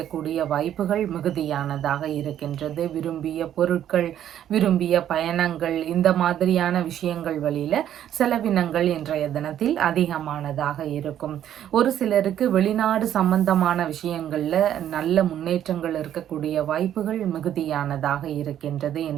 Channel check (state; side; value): quieter; left; 10.8 dB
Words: வாய்ப்புகள் மிகுதியானதாக இருக்கின்றது. விரும்பிய பொருட்கள், விரும்பிய பயணங்கள் இந்த மாதிரியான விஷயங்கள் வழியில செலவினங்கள் இன்றைய தினத்தில் அதிகமானதாக இருக்கும். ஒரு சிலருக்கு வெளிநாடு சம்பந்தமான விஷயங்கள்ல நல்ல முன்னேற்றங்கள் இருக்கக்கூடிய வாய்ப்புகள் மிகுதியானதாக இருக்கின்றது.